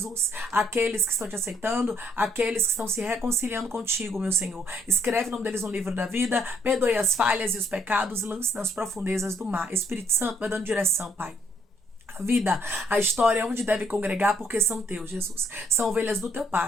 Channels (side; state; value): both; normal; correlation 0.69